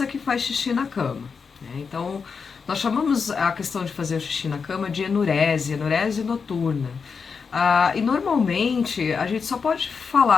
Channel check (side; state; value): right; quieter; 5.6 dB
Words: que faz xixi na cama, né? Então, nós chamamos a questão de fazer o xixi na cama de enurese noturna. E normalmente a gente só pode